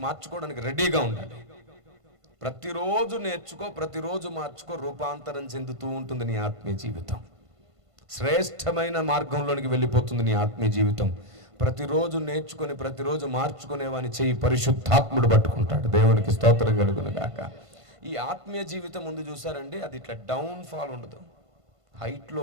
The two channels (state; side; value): late; left; 1.5 ms